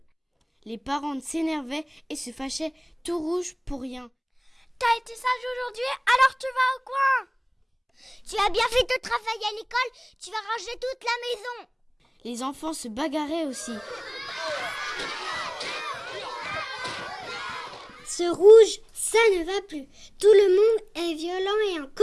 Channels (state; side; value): identical; both; correlation 1.00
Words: Les parents s'énervaient et se fâchaient, tout rouge pour rien. T'as été sage aujourd'hui, alors tu vas au coin. Tu as bien fait ton travail à l'école, tu vas ranger toute la maison. Les enfants se bagarraient aussi. Ce rouge, ça ne va plus. Tout le monde est violent et en